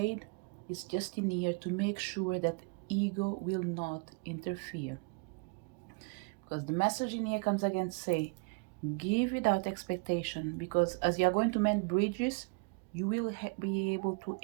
it's just in here to make sure that ego will not interfere. Because the message in here comes again to say, give without expectation, because as you are going to mend bridges, you will be able to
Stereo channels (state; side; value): quieter; left; 30.7 dB